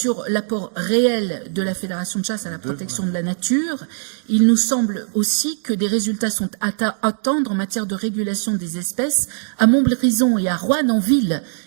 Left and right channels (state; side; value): silent; left; digital silence